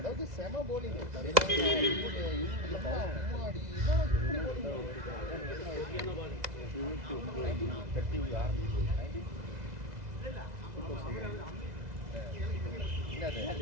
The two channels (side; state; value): left; late; 2.0 ms